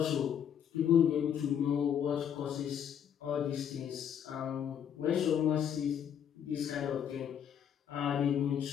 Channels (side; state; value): right; quieter; 8.7 dB